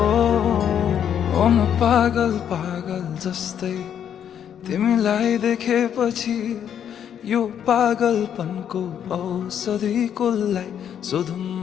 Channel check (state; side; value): quieter; right; 9.1 dB